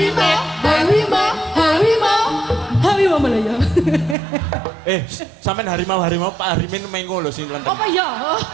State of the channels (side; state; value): left; drops out; at 4.2 s